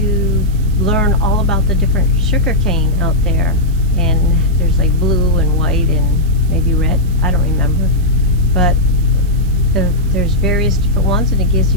learn all about the different sugar cane out there, and there's like blue and white and maybe red, I don't remember, but there's various different ones, and it gives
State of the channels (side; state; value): right; noise; hiss, 24 dB below the sound